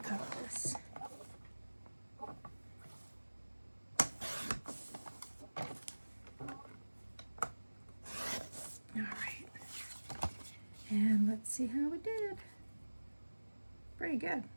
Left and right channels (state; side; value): inverted; both; correlation -1.00